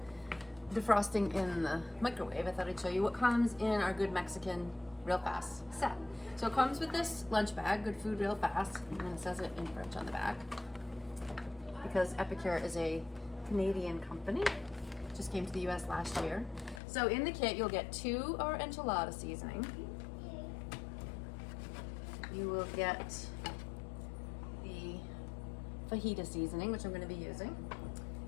defrosting in the microwave, I thought I'd show you what comes in our Good Mexican Real Fast set. So it comes with this lunch bag, Good Food Real Fast, and it says it in French on the back because Epicure is a Canadian company. Just came to the US last year. So in the kit you'll get 2 our enchilada seasoning. You will get the fajita seasoning, which I'm going to be using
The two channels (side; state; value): right; drops out; at 16.8 s